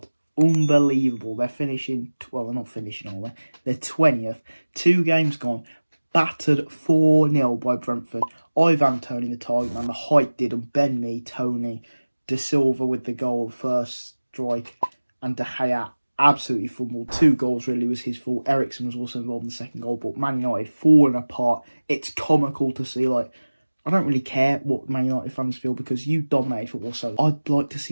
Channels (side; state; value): both; inverted; correlation -1.00